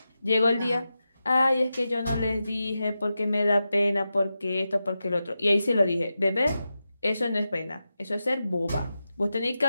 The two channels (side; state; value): both; inverted; correlation -0.91